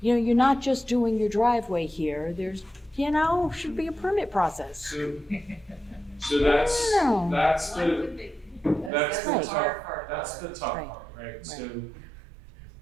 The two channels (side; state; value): left; drops out; at 8.9 s